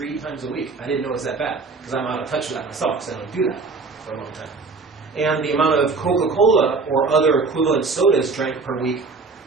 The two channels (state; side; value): quieter; left; 4.2 dB